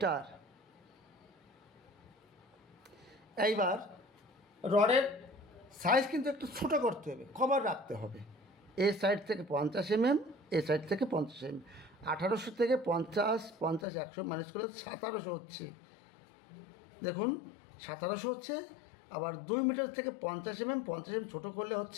এইবার রডের সাইজ কিন্তু একটু ছোটো করতে হবে, কভার রাখতে হবে। এই সাইড থেকে 50 mm, এই সাইড থেকে 50 mm। 1800 থেকে 50, 100 মাইনাস করলে 1700 হচ্ছে। দেখুন 1700 হচ্ছে। আবার 2 মিটার থেকে 50 mm, 50 mm ছোটো করলে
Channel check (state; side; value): drops out; right; at 13.9 s